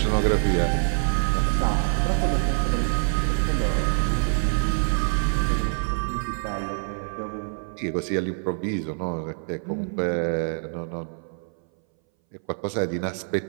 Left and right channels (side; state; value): left; silent; 61 dB below the other